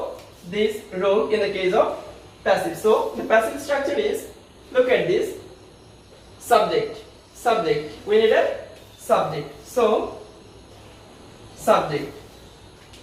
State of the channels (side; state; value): both; identical; correlation 1.00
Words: this rule in the case of passive. So the passive structure is, look at this, subject, subject. We need a subject. So subject.